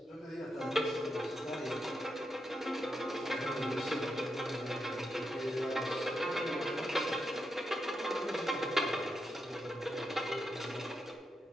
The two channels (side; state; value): both; normal; correlation 0.85